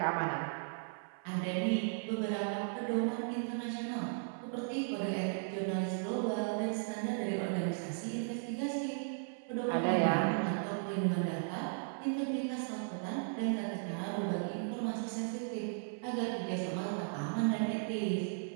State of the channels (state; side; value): silent; left; 54 dB below the other